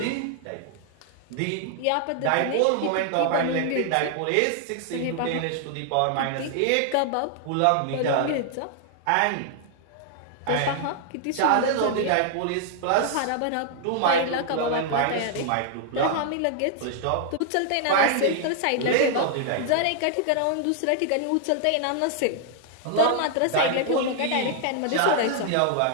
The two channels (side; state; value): both; different; correlation 0.00